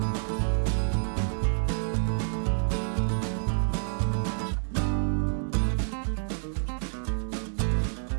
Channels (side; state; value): left; silent; digital silence